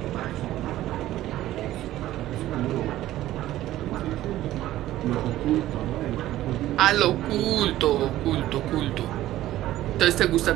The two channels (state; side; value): quieter; left; 14.5 dB